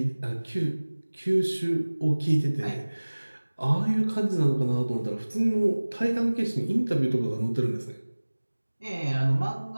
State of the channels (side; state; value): both; inverted; correlation -1.00